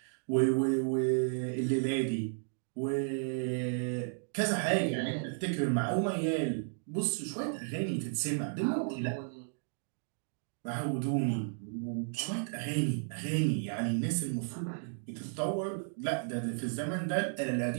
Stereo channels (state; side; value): silent; left; digital silence